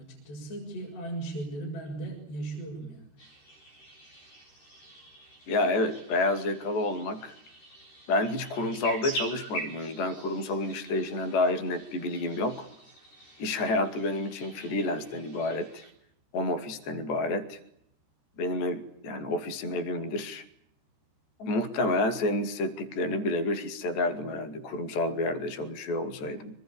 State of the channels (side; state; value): right; late; 14 ms